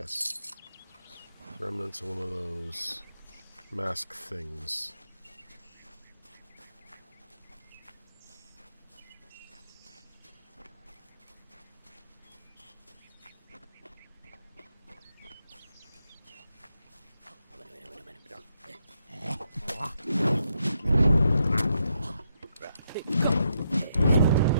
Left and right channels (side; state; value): both; inverted; correlation -0.79